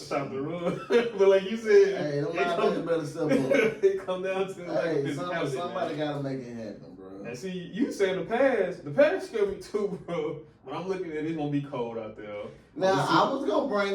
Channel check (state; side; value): identical; both; correlation 1.00